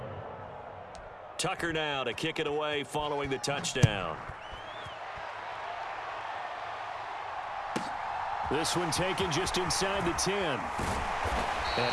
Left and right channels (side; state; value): both; identical; correlation 1.00